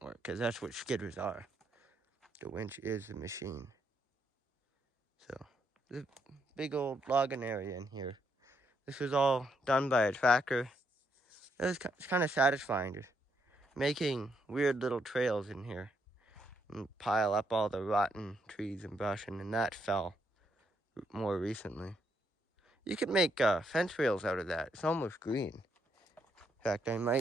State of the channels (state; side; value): normal; both; correlation 0.76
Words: work, because that's what skidders are. The winch is the machine. So, there's a big old logging area in here. This was all done by a tractor. It's kind of satisfying, just making weird little trails in here and pile up all the rotten trees and brush, and that fell more recently. You could make fence rails out of that. It's almost green. In fact,